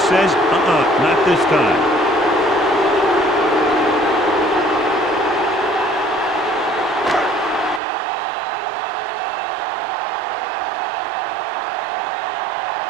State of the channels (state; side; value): drops out; left; at 7.8 s